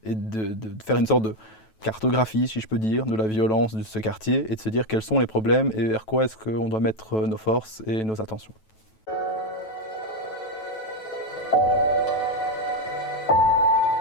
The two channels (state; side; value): late; right; 9.2 ms